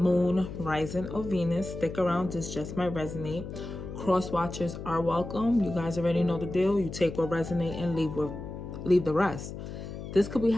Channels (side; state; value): left; noise; hum, 9 dB below the sound